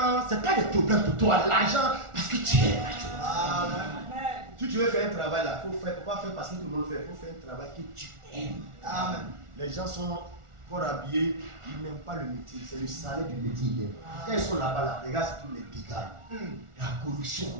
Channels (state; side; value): late; left; 1.4 ms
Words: ce n'est pas des problèmes pour toi, l'argent, parce que tu aimes la chose. Amen. Si tu veux faire un travail là, il faut faire, pas faire parce que tout le monde fait, il faut faire un travail que tu aimes. Amen. Les gens sont fort habillés, ils n'aiment pas le métier, c'est le salaire du métier. Quand ils sont là-bas, là, regarde tous les dégâts, la corruption,